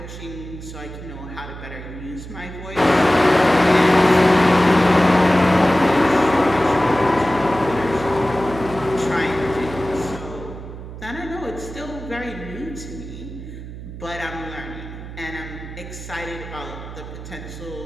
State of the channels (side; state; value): right; noise; hum, 12 dB below the sound